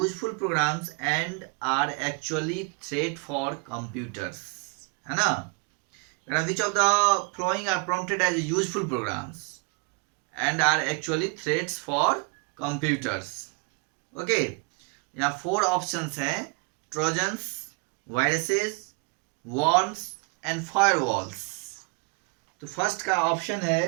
programs and are actually threat for computers, है ना। Which of the following are prompted as useful programs and are actually threats for computers. Okay, यहाँ 4 options हैं, trojans, viruses, worms and firewalls. तो first का option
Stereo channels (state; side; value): quieter; left; 31.6 dB